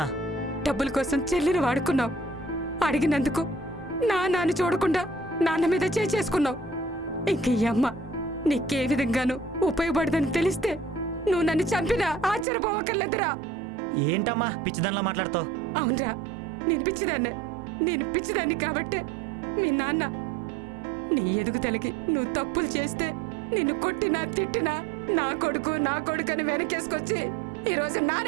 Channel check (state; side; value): drops out; left; at 12.5 s